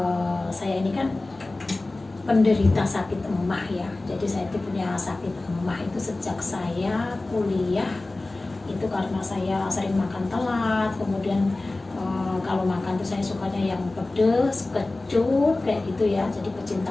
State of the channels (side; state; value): right; quieter; 3.0 dB